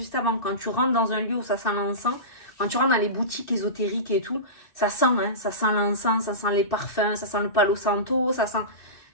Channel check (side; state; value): right; late; 2.6 ms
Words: avant? Quand tu rentres dans un lieu où ça sent l'encens, quand tu rentres dans les boutiques ésotériques et tout, ça sent, hein, ça sent l'encens, ça sent les parfums, ça sent le palo santo, ça sent...